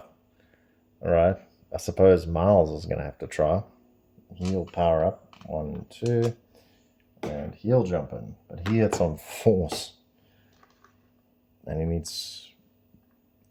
Alright, I suppose Miles is going to have to try. He'll power up 1, 2, and he'll jump in. But he hits on force. And he's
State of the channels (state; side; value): identical; both; correlation 1.00